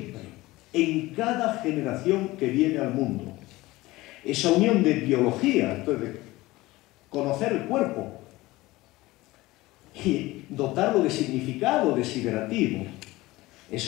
en cada generación que viene al mundo. Esa unión de biología, entonces, de conocer el cuerpo y dotarlo de significado desiderativo,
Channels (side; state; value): right; quieter; 19.3 dB